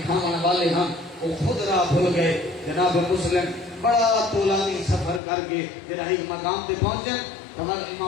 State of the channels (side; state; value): right; drops out; at 5.2 s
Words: والے ہم وہ خود راہ بھول گئے. جناب مسلم بڑا طولانی سفر کر کے جڑا ایک مقام تے پہنچے ہمارے